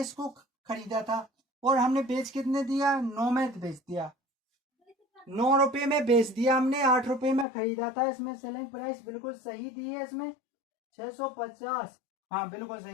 इसको खरीदा था और हमने बेच कितने दिया, 9 में बेच दिया, 9 रुपये में बेच दिया हमने, 8 रुपये में खरीदा था। इसमें सेलिंग प्राइस बिल्कुल सही दी है, इसमें 650, हाँ बिल्कुल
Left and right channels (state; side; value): drops out; right; at 7.5 s